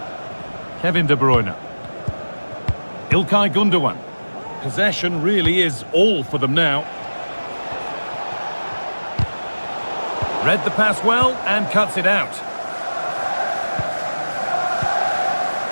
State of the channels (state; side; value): inverted; both; correlation -1.00